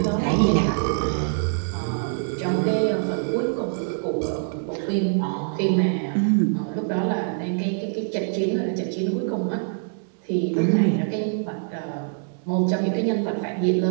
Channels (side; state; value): left; silent; digital silence